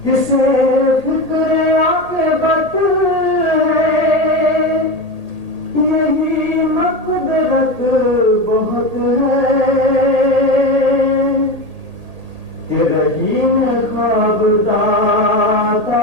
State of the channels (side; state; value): left; late; 1.8 ms